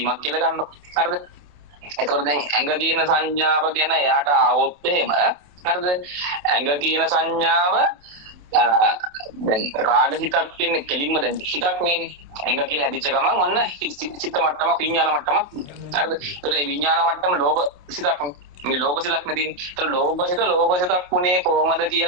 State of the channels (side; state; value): left; late; 27 ms